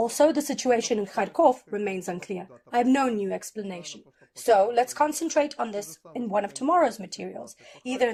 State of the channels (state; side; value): identical; both; correlation 1.00